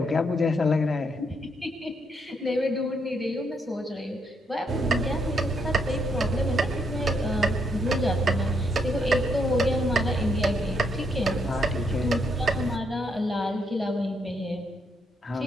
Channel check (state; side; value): normal; both; correlation 0.76